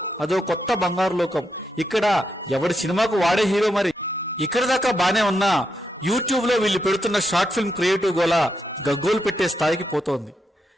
అదో కొత్త బంగారు లోకం. ఇక్కడ ఎవడి సినిమాకు వాడే హీరో మరి. ఇక్కడ దాకా బానే ఉన్నా యూట్యూబ్ లో వీళ్ళు పెడుతున్న షార్ట్ ఫిల్మ్ క్రియేటివ్ గోల గగ్గోలు పెట్టే స్థాయికి పోతోంది.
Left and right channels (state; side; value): normal; both; correlation 0.82